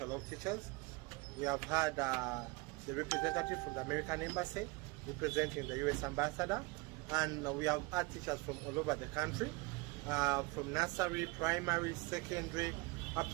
teachers. We have had the representative from the American Embassy representing the US Ambassador. And we have had teachers from all over the country, from nursery, primary, secondary, up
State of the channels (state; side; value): quieter; left; 24.9 dB